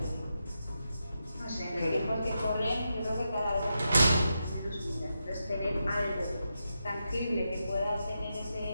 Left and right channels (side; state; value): both; inverted; correlation -0.86